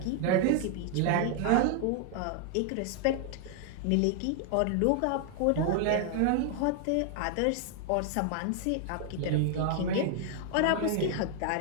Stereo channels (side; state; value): both; different; correlation 0.00